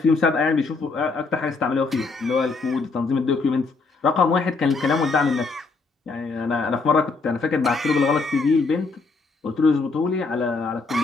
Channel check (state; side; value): quieter; right; 4.1 dB